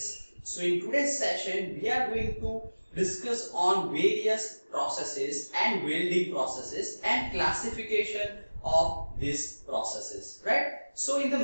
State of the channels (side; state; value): both; inverted; correlation -1.00